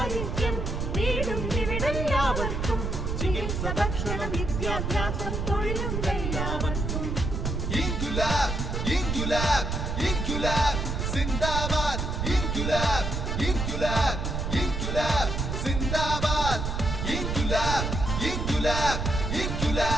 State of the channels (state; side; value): noise; right; rumble, 2 dB below the sound